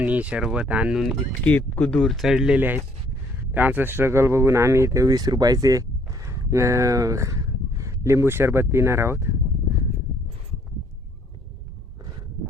सरबत आणून इतकं दूर चढलेले आहेत. त्यांचं स्ट्रगल बघून आम्ही इथे 20 रुपयाचे लिंबू सरबत पिणार आहोत.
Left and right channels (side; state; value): both; normal; correlation 0.63